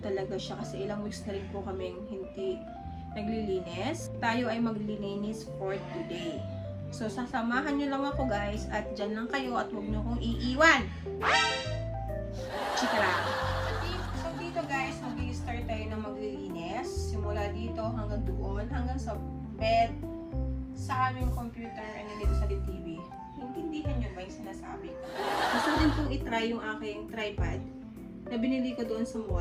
siya kasi ilang weeks na rin po kaming hindi naglilinis. Tayo ay maglilinis for today. So, sasamahan nyo lang ako guys at dyan lang kayo at huwag nyo kong iiwan. Chika lang. So, dito guys, mag-i-start tayo ng maglilinis. Simula dito hanggang doon, hanggang sa bed, sa aming computer, and dito sa TV. Intindihan nyo ba yung sinasabi ko? Gusto ko din pong itry yung aking tripod na binili ko doon sa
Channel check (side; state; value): both; identical; correlation 1.00